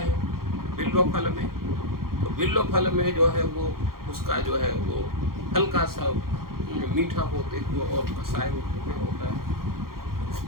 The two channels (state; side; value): late; left; 0.92 ms